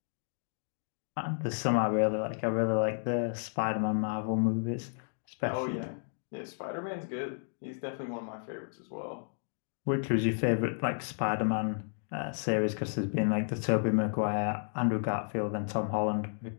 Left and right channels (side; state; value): right; silent; digital silence